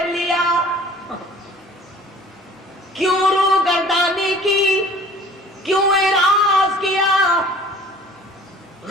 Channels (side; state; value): both; normal; correlation 0.49